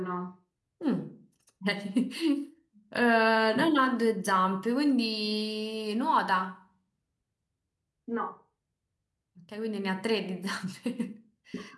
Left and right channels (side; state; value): both; identical; correlation 1.00